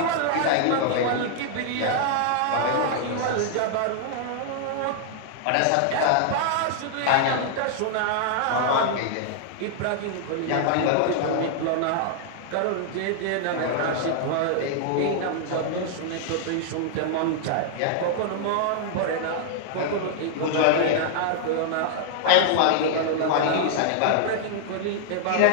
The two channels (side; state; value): both; different; correlation -0.01